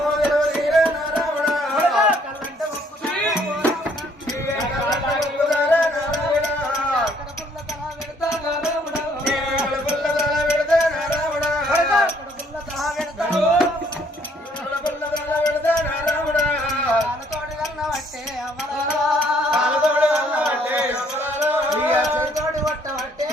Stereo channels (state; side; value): normal; both; correlation 0.65